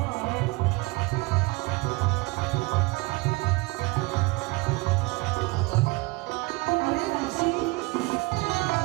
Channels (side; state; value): left; quieter; 23.7 dB